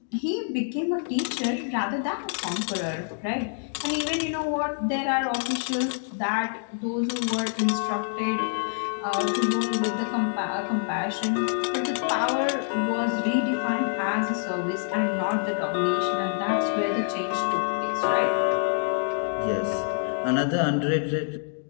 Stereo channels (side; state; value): right; silent; digital silence